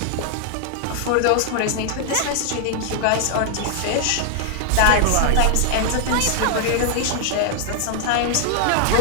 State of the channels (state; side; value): different; both; correlation 0.00